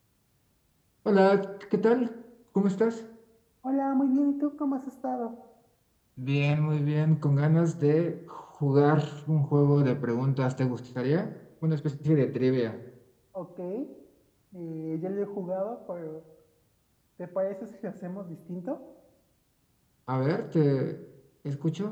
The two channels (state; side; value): identical; both; correlation 1.00